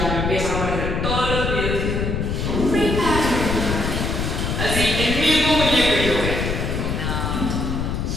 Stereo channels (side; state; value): left; noise; rumble, 1 dB below the sound